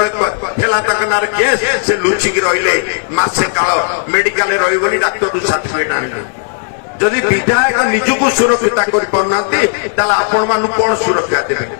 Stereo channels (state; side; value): silent; right; 59 dB below the other